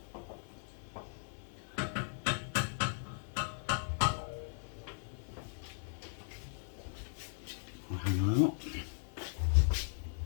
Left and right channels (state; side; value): silent; right; 52 dB below the other